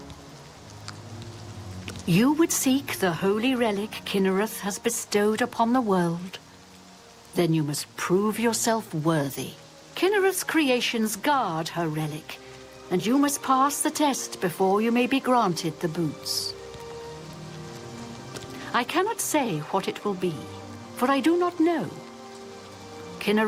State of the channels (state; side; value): identical; both; correlation 1.00